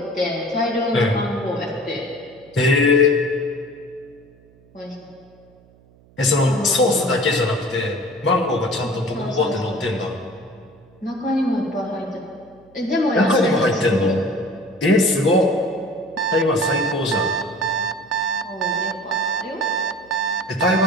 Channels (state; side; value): noise; right; hum, 28 dB below the sound